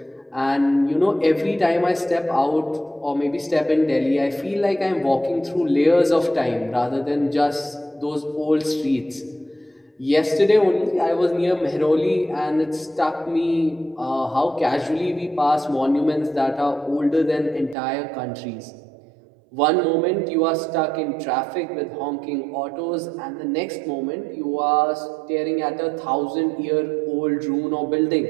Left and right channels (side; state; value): left; drops out; at 17.8 s